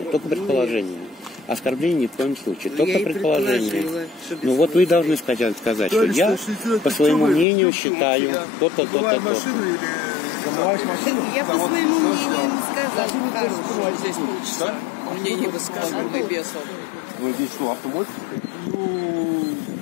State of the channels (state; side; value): drops out; right; at 7.5 s